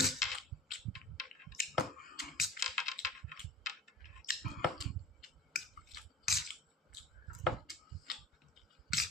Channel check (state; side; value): normal; both; correlation 0.43